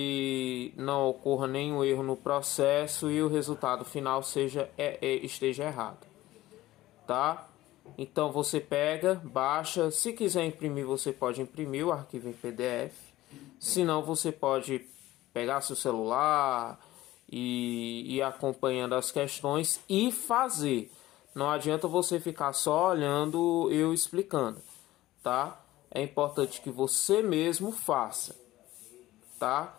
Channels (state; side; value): quieter; right; 16.3 dB